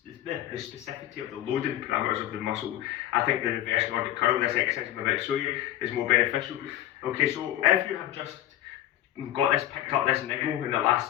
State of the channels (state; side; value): quieter; right; 13.4 dB